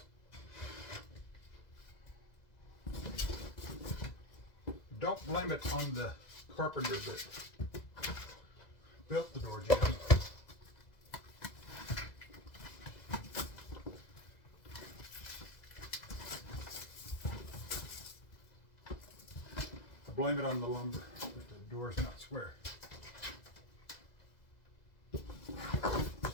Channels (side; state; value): right; late; 2.0 ms